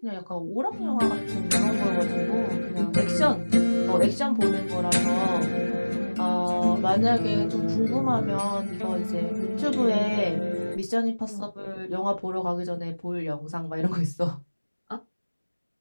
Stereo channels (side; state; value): both; inverted; correlation -1.00